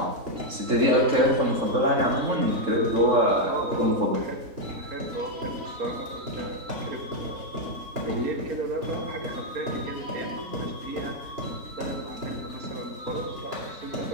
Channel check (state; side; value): late; left; 3.7 ms